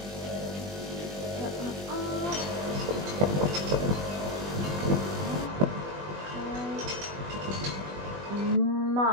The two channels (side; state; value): left; late; 20 ms